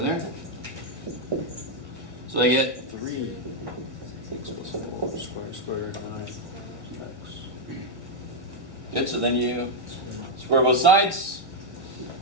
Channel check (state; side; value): late; left; 1.7 ms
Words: there. So I get 3 x plus 4 square root of 9 x. good. So then you square both sides.